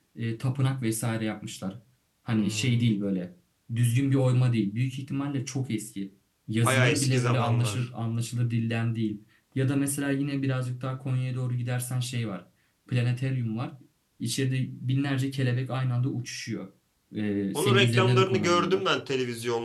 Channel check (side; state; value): both; identical; correlation 1.00